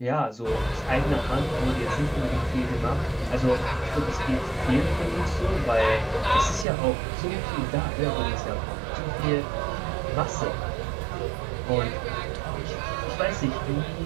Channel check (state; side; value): drops out; left; at 6.7 s